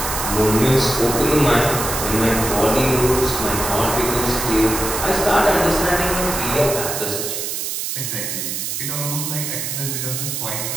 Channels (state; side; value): noise; right; hiss, 3 dB below the sound